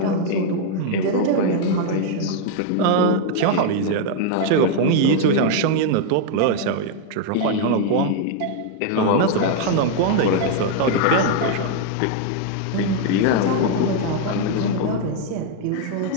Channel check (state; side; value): different; both; correlation 0.00